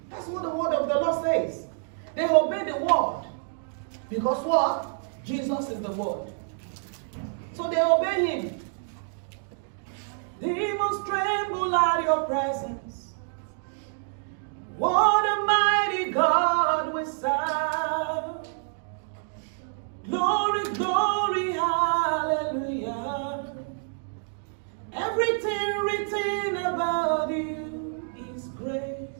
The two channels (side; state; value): left; silent; digital silence